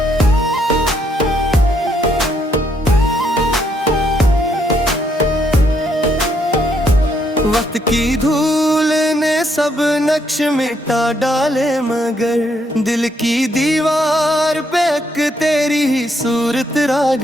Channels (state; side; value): normal; both; correlation 0.73